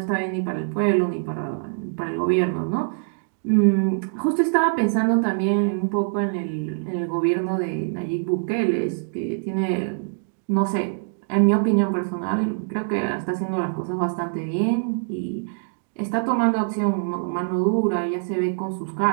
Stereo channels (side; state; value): left; silent; digital silence